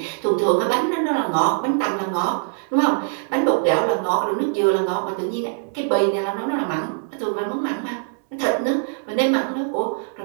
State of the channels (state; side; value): silent; left; digital silence